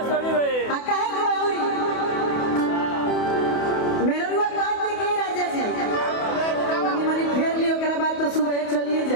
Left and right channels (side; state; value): right; late; 28 ms